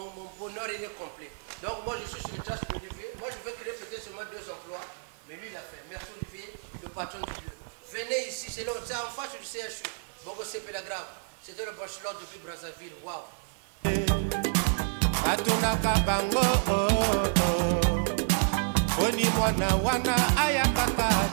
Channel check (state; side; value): silent; left; digital silence